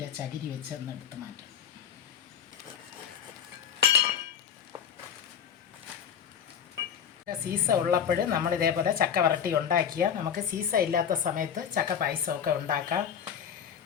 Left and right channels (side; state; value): right; quieter; 8.2 dB